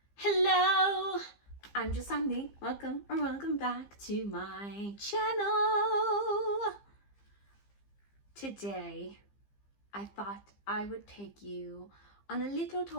Hello, I'm just Sandy. Welcome back to my channel. Today, I thought I would take you on a little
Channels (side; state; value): right; late; 15 ms